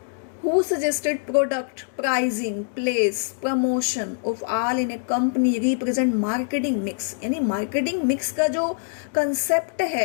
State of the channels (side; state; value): right; silent; digital silence